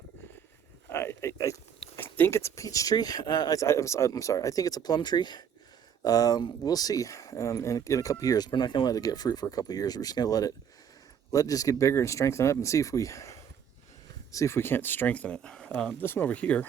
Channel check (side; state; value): left; quieter; 8.1 dB